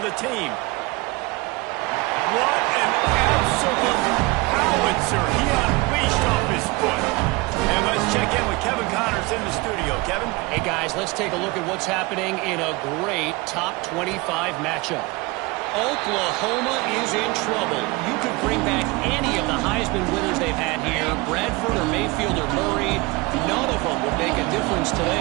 the team. What an absolute howitzer. He unleashed off his foot. And let's check in with Kevin Connors in the studio. Kevin? Hey, guys, let's take a look at what's happening in a great top 25 matchup. Oklahoma is in trouble. You could bring back any of the Heisman winners they've had here, Bradford or Mayfield or Murray. None of them would make a difference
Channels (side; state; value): left; quieter; 23.9 dB